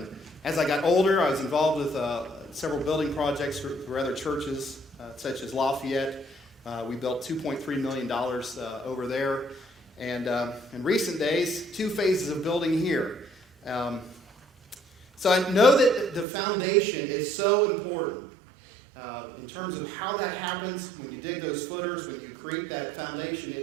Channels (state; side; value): drops out; left; at 16.2 s